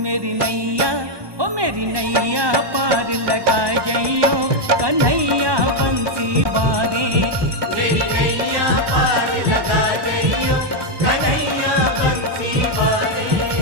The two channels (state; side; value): late; left; 1.2 ms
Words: मेरी नैया, ओ मेरी नैया पार लगा जइयो कन्हैया बंसी वारे। मेरी नैया पार लगा जइयो कन्हैया बंसी